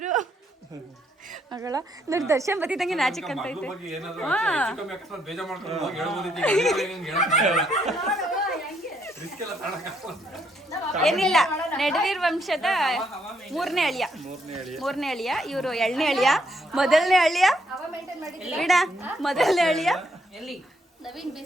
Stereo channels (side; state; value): both; normal; correlation 0.73